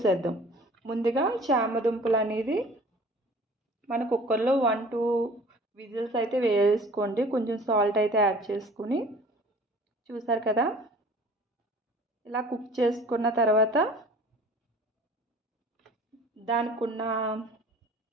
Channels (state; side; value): normal; both; correlation 0.47